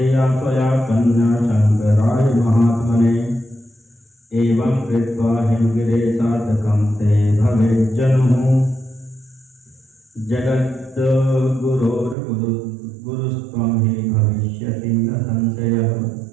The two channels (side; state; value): left; drops out; at 12.2 s